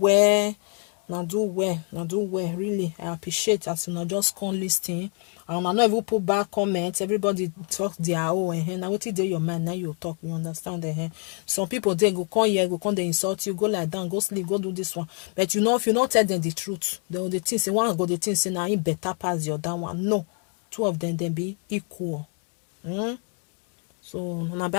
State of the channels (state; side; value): quieter; right; 38.5 dB